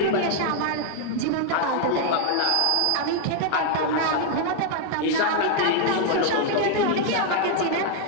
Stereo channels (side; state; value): both; different; correlation 0.00